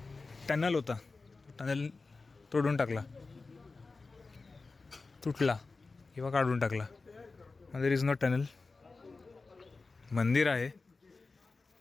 टनल होता, टनल तोडून टाकला, तुटला किंवा काढून टाकला. There is no tunnel. मंदिर आहे,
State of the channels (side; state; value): right; quieter; 3.9 dB